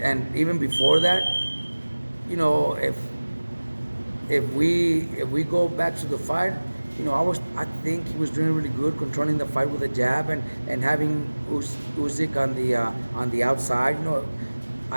even before that, if we go back to the fight, I think he was doing really good, controlling the fight with a jab and having Usyk on the outside.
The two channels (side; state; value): both; inverted; correlation -1.00